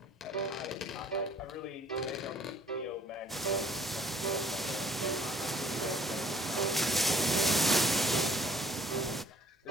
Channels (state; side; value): normal; both; correlation 0.59